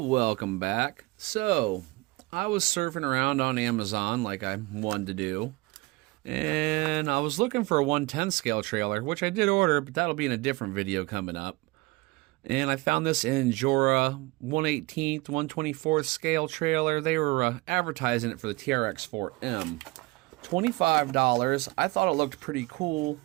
welcome back. So, I was surfing around on Amazon like I wanted to do, and I was looking for a 110 scale trailer, which I did order, but that'll be in a different video coming up. And I found this injora 1/18th, 1/24th scale trailer. They were advertising it for the trx4m. $25. I thought it looked pretty cool,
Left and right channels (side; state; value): left; quieter; 22.8 dB